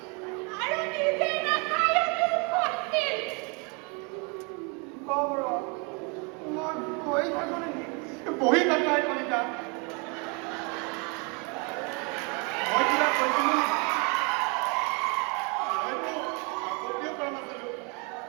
আৰু নিজে নাখায়ো দুখ হৈছিল কওঁ ৰ মই গৈ থাকোঁ নেকি বহি নাপাই কলিতা মই কিবা কৈছিলোঁ হয়তো আপত্তিও কৰা নাছিলোঁ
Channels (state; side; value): quieter; left; 33.1 dB